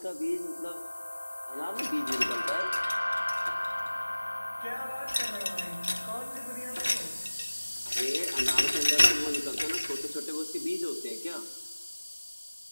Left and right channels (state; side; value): inverted; both; correlation -1.00